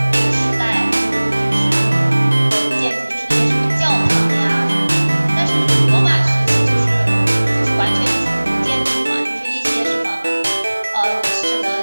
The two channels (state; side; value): inverted; both; correlation -1.00